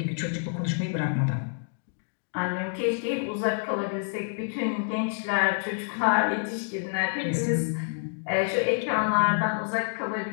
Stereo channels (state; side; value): silent; right; digital silence